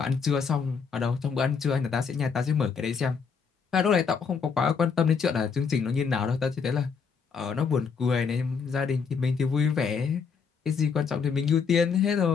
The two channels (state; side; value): quieter; right; 5.9 dB